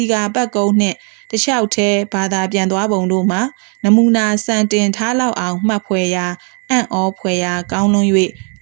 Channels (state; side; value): quieter; left; 38.8 dB